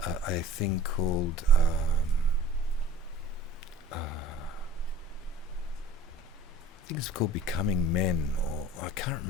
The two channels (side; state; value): both; normal; correlation 0.46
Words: a thing called I think it's called Becoming Men, or I can't